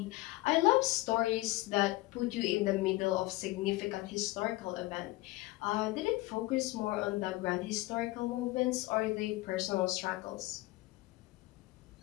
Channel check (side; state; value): right; quieter; 19.8 dB